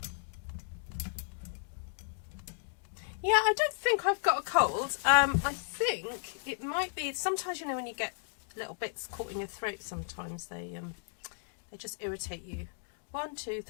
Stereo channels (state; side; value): silent; right; digital silence